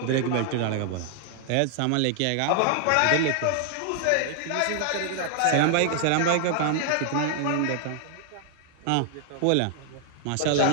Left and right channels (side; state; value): both; different; correlation 0.00